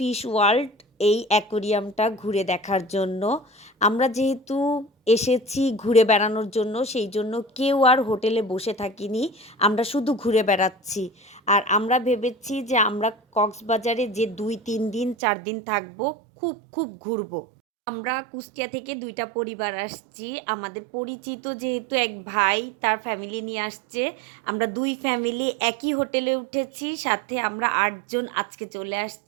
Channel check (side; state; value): left; drops out; at 15.2 s